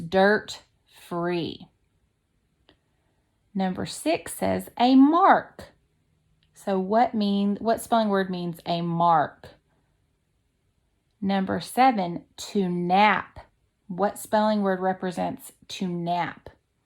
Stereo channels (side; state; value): both; identical; correlation 1.00